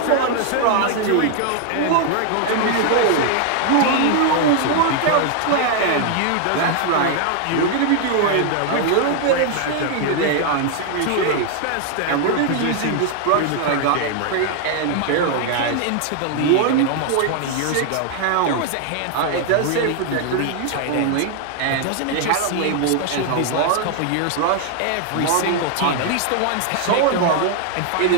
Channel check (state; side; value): different; both; correlation 0.00